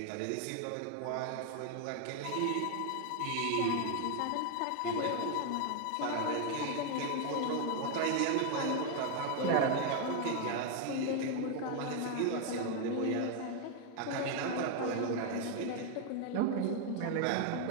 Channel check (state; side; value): different; both; correlation 0.01